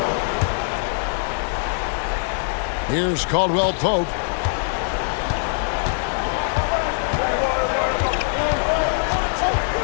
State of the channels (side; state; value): right; silent; 64 dB below the other